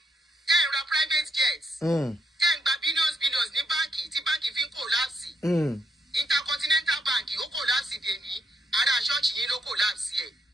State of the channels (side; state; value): both; normal; correlation 0.76